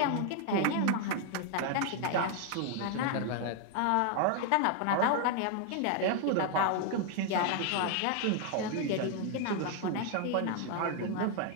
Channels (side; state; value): both; different; correlation 0.00